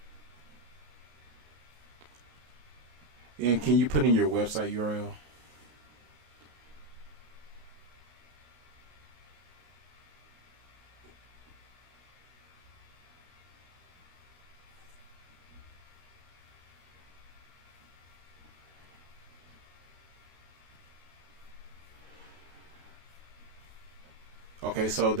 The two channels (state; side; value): late; left; 33 ms